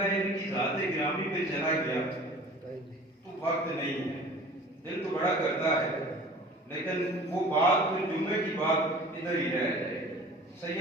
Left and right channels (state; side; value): normal; both; correlation 0.44